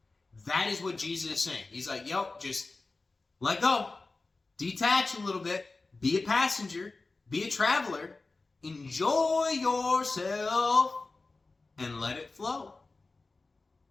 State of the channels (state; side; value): quieter; right; 3.6 dB